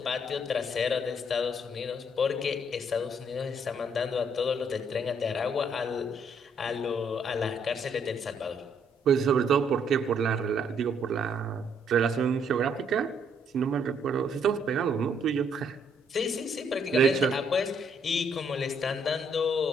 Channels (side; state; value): both; normal; correlation 0.69